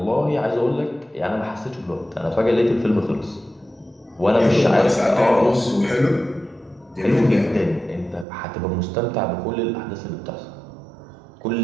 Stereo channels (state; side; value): drops out; left; at 8.2 s